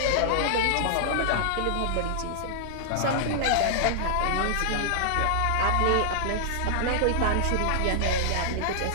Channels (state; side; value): different; both; correlation -0.01